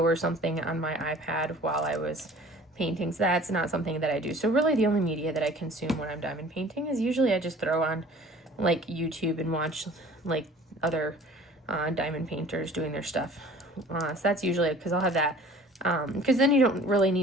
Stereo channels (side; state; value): both; normal; correlation 0.48